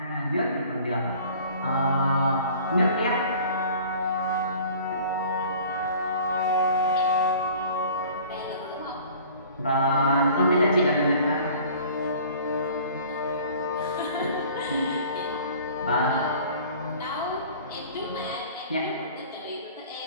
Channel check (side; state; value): both; inverted; correlation -0.48